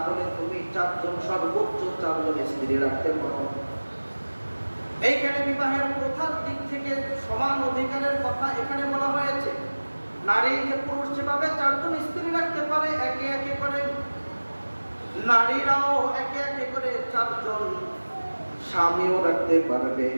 তুমি 4 জন, সর্বোচ্চ 4 জন স্ত্রী রাখতে পারো। এইখানে বিবাহের প্রথার দিক থেকে সমান অধিকারের কথা এখানে বলা হয়েছে। নারী যে পুরুষ যেভাবে 4 জন স্ত্রী রাখতে পারে, একে একে করে নারীরাও একে একে করে 4 জন স্বামীও রাখতে পারবে।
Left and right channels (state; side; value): inverted; both; correlation -1.00